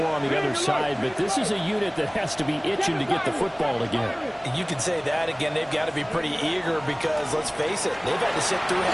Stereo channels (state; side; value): identical; both; correlation 1.00